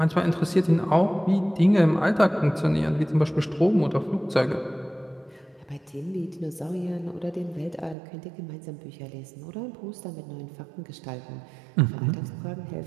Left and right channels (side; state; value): left; drops out; at 8.0 s